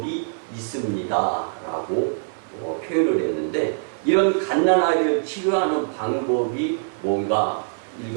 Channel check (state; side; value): silent; left; 57 dB below the other